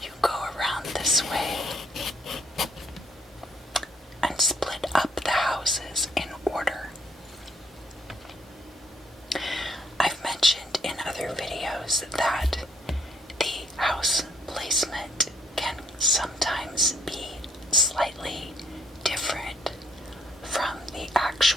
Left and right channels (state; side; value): normal; both; correlation 0.68